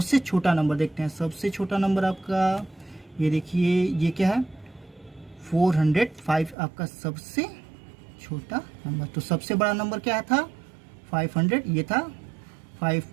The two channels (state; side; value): drops out; left; at 6.6 s